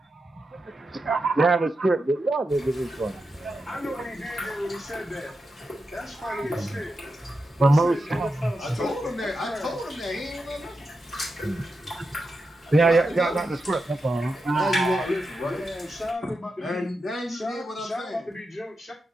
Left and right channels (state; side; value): normal; both; correlation 0.88